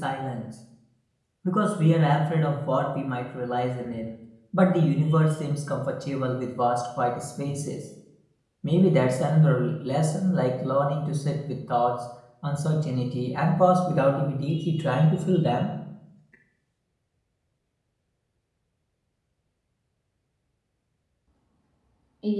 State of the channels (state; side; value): identical; both; correlation 1.00